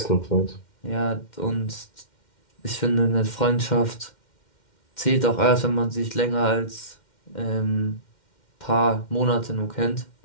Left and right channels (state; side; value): late; right; 2.1 ms